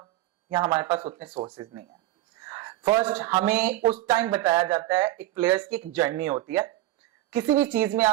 या हमारे पास उतने सोर्सेज नहीं है। फर्स्ट, हमें उस टाइम बताया जाता है, एक प्लेयर्स की एक जर्नी होती है, किसी भी चीज में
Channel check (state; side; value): quieter; left; 15.7 dB